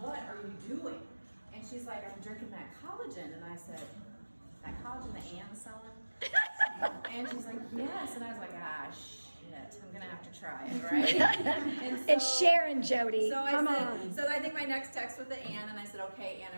are you doing? And she's like, I'm drinking that collagen. And I said, that collagen that Anne's selling? And she's like, yes. And I was like, shit, I'm gonna have to try it, right? And so, it's Sharon, Jody. So Come on. on. So I think my next text was to Anne, and I said, okay, Anne,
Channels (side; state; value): both; inverted; correlation -1.00